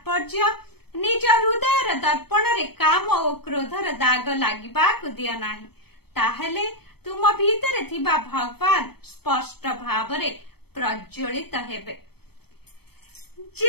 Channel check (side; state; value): right; late; 0.97 ms